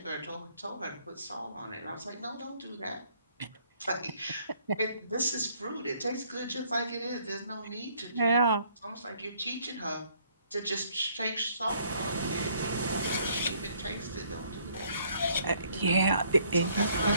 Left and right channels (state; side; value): inverted; both; correlation -0.65